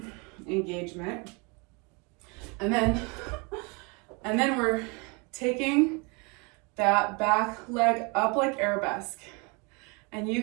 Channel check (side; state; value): left; quieter; 30.5 dB